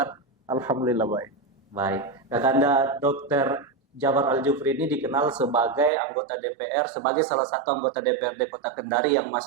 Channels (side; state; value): left; drops out; at 5.9 s